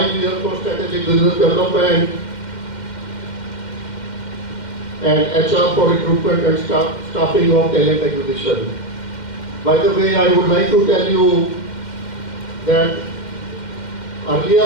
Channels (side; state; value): right; late; 2.1 ms